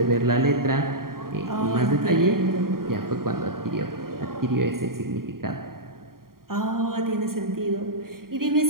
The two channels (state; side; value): late; left; 0.92 ms